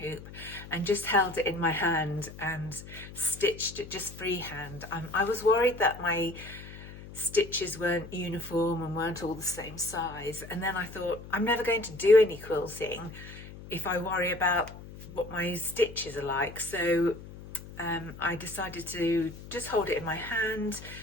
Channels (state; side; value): noise; left; hum, 15 dB below the sound